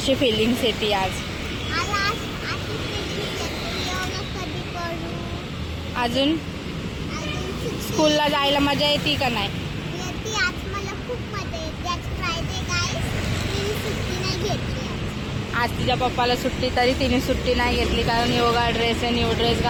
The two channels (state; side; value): identical; both; correlation 1.00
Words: फिलिंग्स येते आज? अजून स्कूलला जायला मजा येते का नाही? आज तिच्या पप्पाला सुट्टी तरी तिने सुट्टी नाही घेतली, कारण योगा ड्रेस आहे, न्यू ड्रेस